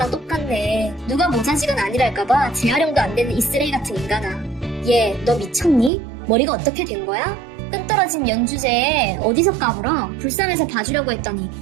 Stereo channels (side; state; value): left; drops out; at 5.9 s